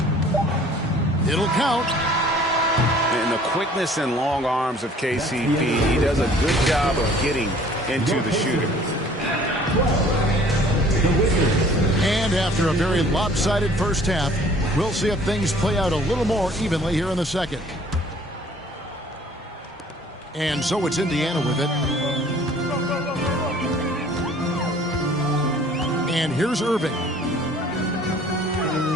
It'll count. And the quickness and long arms of KCP, he does a good job of getting into the shooter. And after a very lopsided first half, we'll see if things play out a little more evenly here in the second. And so it's Indiana with it. And here's Irving.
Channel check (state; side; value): normal; both; correlation 0.53